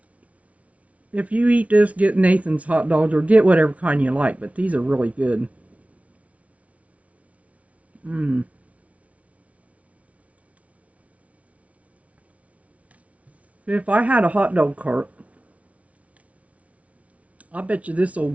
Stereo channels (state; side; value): late; left; 0.066 ms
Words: If you eat this, get Nathan's hot dogs or get whatever kind you like, but these are really good. Mm. If I had a hot dog cart, I bet you this old